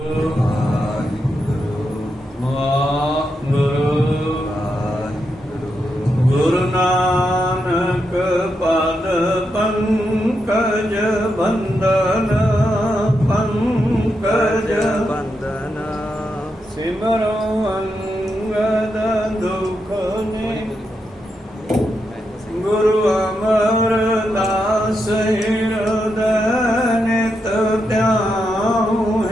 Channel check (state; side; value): normal; both; correlation 0.84